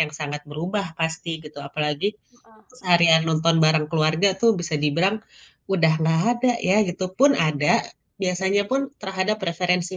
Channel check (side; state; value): both; identical; correlation 1.00